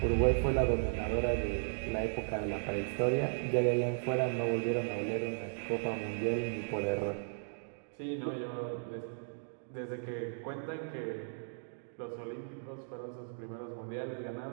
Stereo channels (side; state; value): left; silent; digital silence